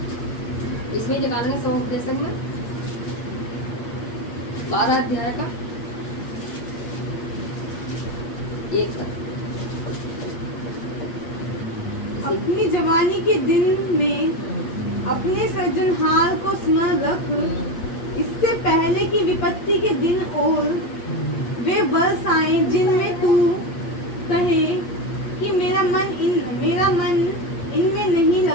इसमें निकालेंगे 100 में 12 अध्याय का 1। अपनी जवानी के दिन में अपने सृजनहार को स्मरण रख, इससे पहले कि विपत्ति के दिन और वे वर्ष आए जिनमें तू कहे कि मेरा मन इनमें नहीं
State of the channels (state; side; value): late; right; 8.5 ms